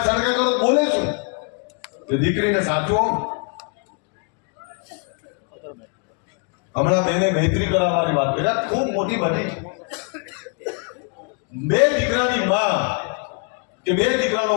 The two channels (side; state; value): right; quieter; 38.4 dB